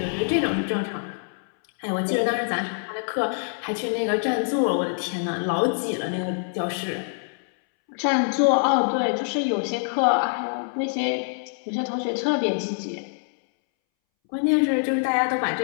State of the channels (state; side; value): silent; right; 62 dB below the other